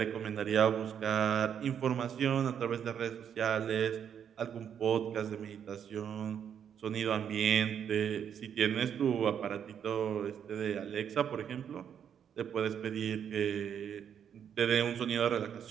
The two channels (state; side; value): quieter; left; 8.4 dB